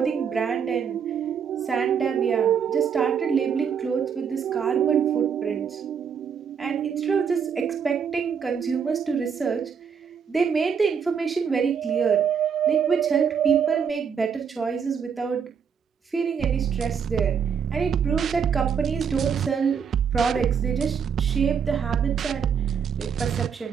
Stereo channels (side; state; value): left; quieter; 7.0 dB